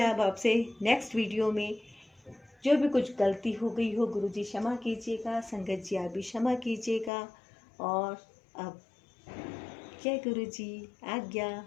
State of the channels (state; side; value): drops out; right; at 7.1 s